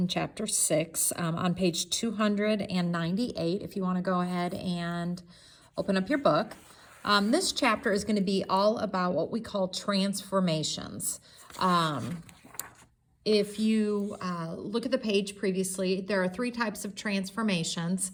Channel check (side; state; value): both; identical; correlation 1.00